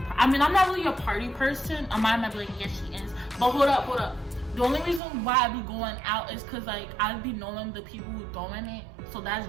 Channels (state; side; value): drops out; left; at 5.0 s